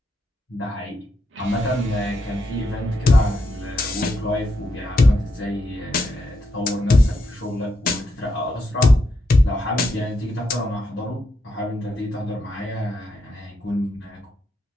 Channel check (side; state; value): both; normal; correlation 0.82